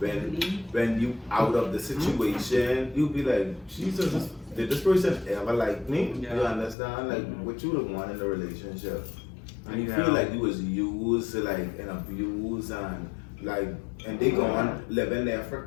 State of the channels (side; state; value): right; drops out; at 6.8 s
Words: when you out of the situation, you be like, Jesus, did this person ever like me? Yeah. You understand? Like what you would want in a relationship. And you Yeah. feel like you was used, like, and abused, and they gone living their